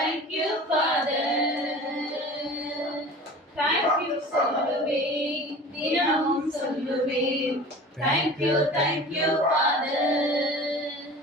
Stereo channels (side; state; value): both; normal; correlation 0.39